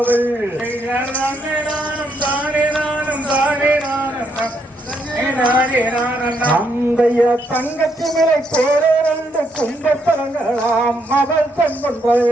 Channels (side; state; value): both; normal; correlation 0.76